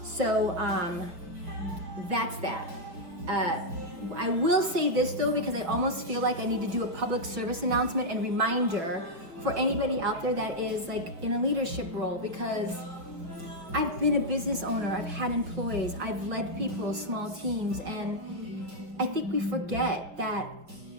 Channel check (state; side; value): late; left; 5.4 ms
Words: So that's that. I will say this though, because I almost feel like I need to do a public service announcement and reminder for anybody out there that is in a leadership role, because I've been a business owner, I've had employees, I've led people, small teams, and I think we forget that